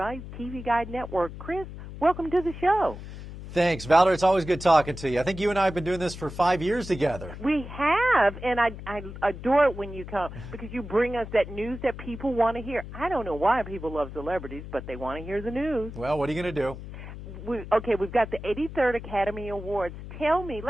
TV Guide Network. Chris, welcome to the show. Thanks, Valder. It's always good talking to you. I think you and I have been doing this for 5 years together. We have, and I adore it when you come because you bring us that news that people want to hear. I don't know why people love celebrities, but they want to hear the news. Well, what are you going to do? We've got the 83rd Academy Awards. Tell me,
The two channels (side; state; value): left; noise; hum, 11 dB below the sound